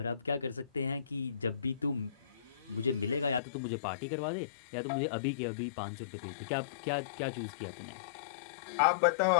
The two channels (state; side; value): drops out; right; at 3.4 s